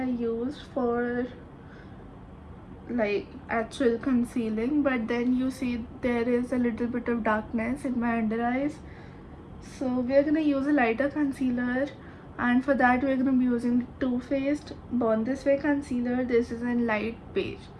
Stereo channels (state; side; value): identical; both; correlation 1.00